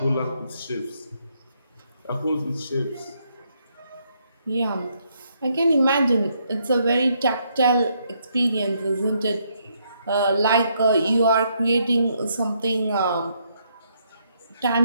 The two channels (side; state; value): both; inverted; correlation -0.74